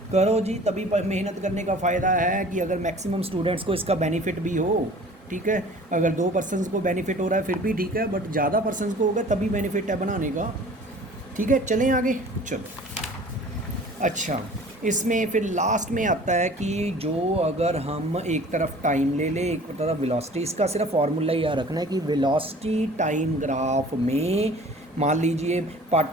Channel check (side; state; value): both; normal; correlation 0.47